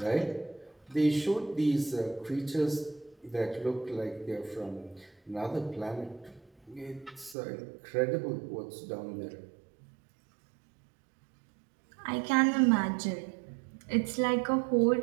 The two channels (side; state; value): left; drops out; at 7.4 s